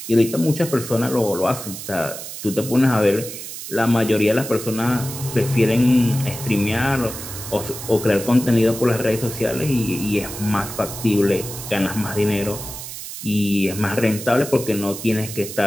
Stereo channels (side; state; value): right; noise; hiss, 10 dB below the sound